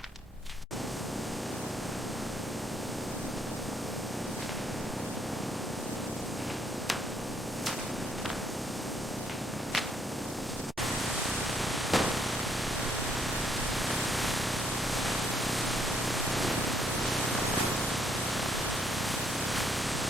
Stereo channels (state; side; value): normal; both; correlation 0.70